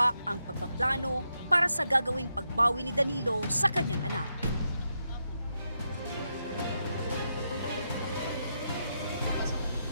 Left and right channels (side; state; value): both; inverted; correlation -0.83